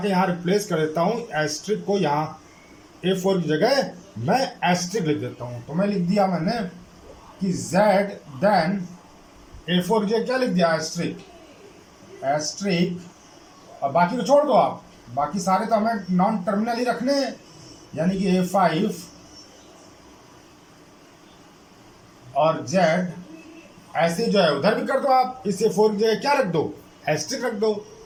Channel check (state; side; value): identical; both; correlation 1.00